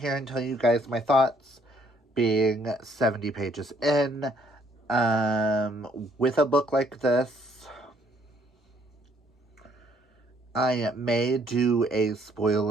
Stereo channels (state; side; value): normal; both; correlation 0.66